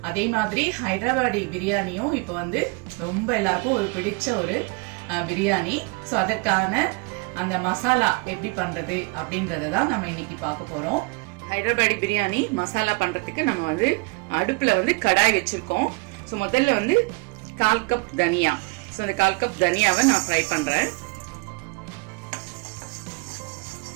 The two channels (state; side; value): quieter; left; 30.1 dB